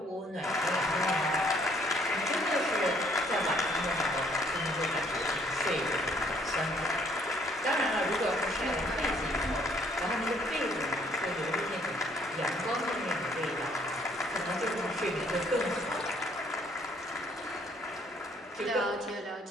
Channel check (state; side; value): normal; both; correlation 0.64